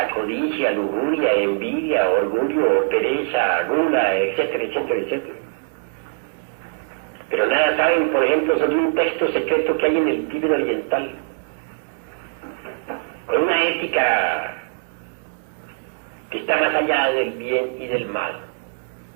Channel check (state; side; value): silent; left; digital silence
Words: codicia, lujuria, envidia, orgullo, pereza, gula, etcétera, etcétera, etcétera. Pero nada saben, por ejemplo, sobre un texto secreto que hay en el Tíbet oriental, con una ética que está más allá del bien y del mal.